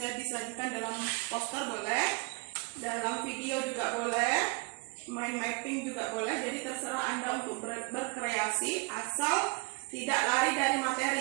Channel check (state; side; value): quieter; left; 30.4 dB